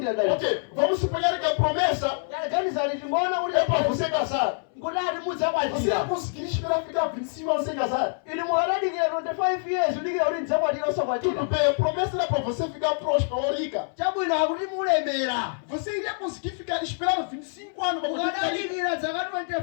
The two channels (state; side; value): silent; right; 61 dB below the other